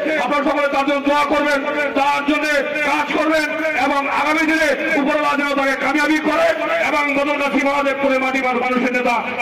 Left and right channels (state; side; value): identical; both; correlation 1.00